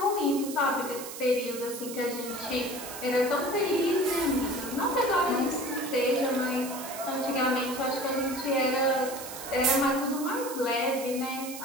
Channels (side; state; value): right; noise; hiss, 10 dB below the sound